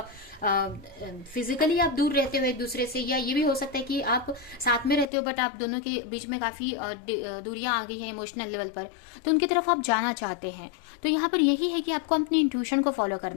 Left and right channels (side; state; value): right; drops out; at 5.1 s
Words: फिजिकली आप दूर रहते हो एक दूसरे से, या ये भी हो सकता है कि आप साथ में रहते हो बट आप दोनों के बीच में काफी दूरियां आ गई हैं इमोशनल लेवल पर, तो उनकी तरफ आप जाना चाहते हैं। तो यहाँ पर यही है कि आपको अपनी इंट्यूशन को फॉलो